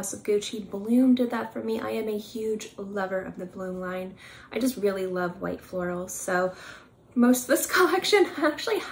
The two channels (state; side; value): identical; both; correlation 1.00